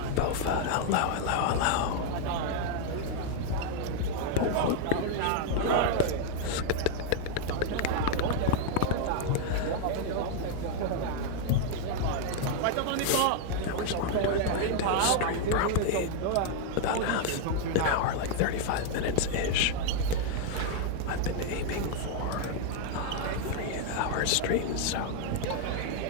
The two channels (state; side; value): different; both; correlation 0.00